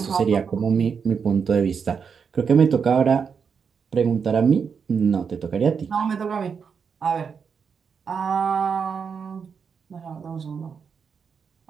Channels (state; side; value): quieter; left; 6.3 dB